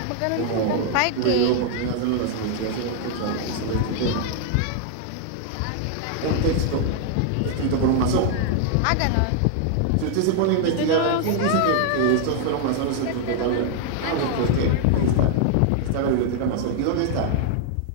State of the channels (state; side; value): different; both; correlation 0.00